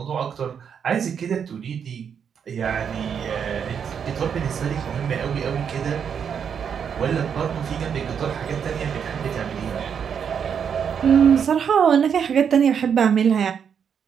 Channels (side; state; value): left; quieter; 7.4 dB